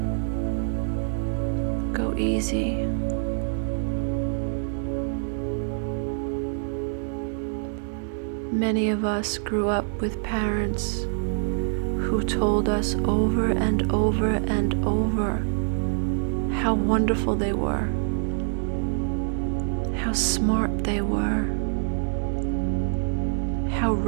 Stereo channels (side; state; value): left; silent; 61 dB below the other